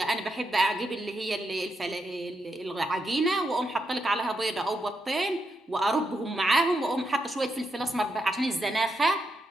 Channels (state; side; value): normal; both; correlation 0.82